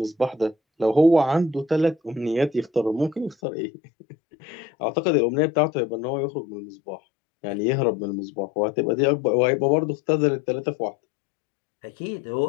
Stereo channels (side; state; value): right; drops out; at 3.4 s